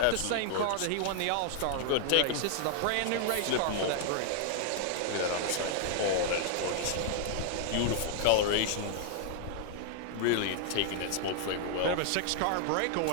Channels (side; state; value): both; different; correlation 0.00